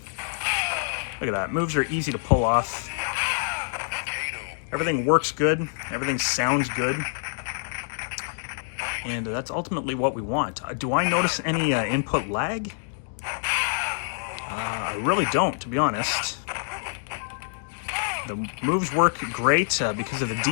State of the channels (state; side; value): silent; right; digital silence